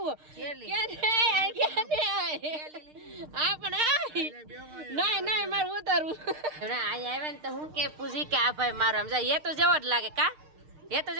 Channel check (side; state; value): left; late; 6.6 ms